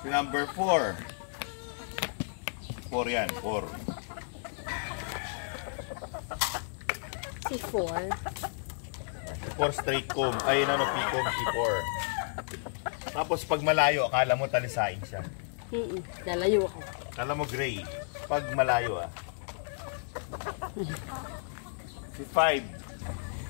si number 4. 4 yan, 4. Si 4. 4 straight comb. Ay, P-comb, C4. Tapos pag malayo, akala mo talisain siya. Lalayo ako. Akala mo gray. Pag malayo, Si 5.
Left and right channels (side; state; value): right; silent; digital silence